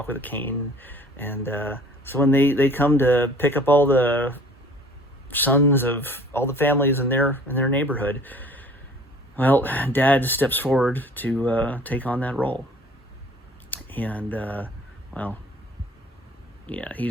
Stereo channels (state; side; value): normal; both; correlation 0.51